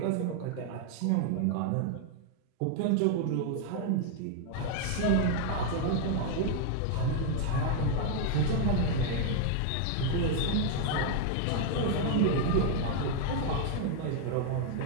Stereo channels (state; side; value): different; both; correlation 0.00